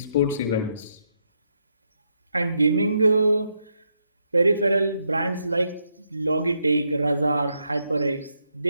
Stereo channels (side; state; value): both; inverted; correlation -0.79